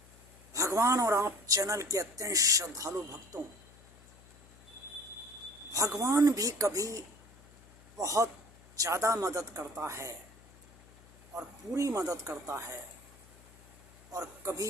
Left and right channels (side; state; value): left; noise; hum, 24 dB below the sound